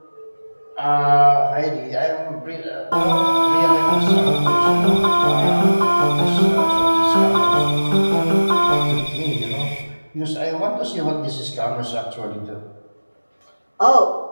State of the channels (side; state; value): both; inverted; correlation -1.00